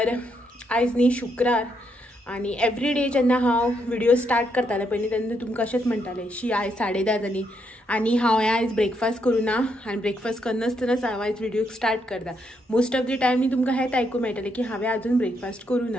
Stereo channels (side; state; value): both; normal; correlation 0.77